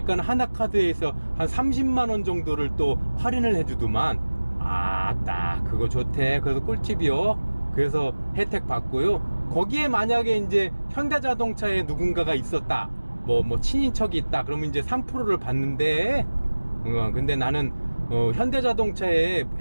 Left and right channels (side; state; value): both; inverted; correlation -1.00